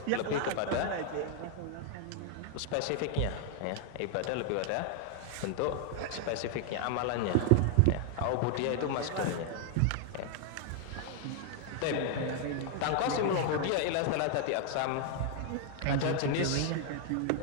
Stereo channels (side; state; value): both; different; correlation 0.00